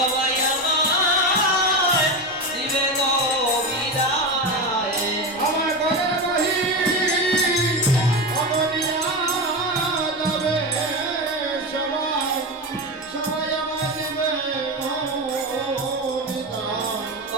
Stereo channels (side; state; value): both; normal; correlation 0.18